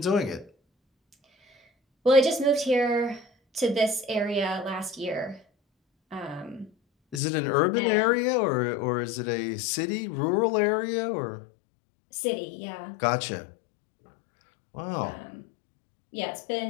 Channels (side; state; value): right; drops out; at 7.2 s